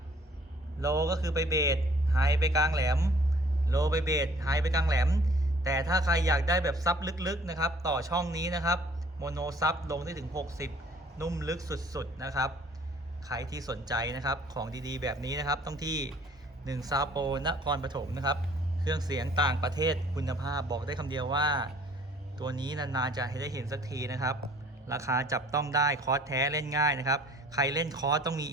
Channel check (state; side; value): normal; both; correlation 0.55